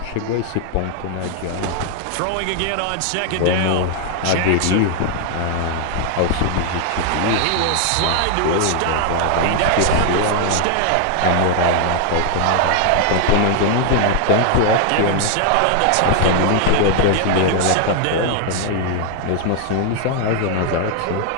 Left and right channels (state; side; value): different; both; correlation 0.00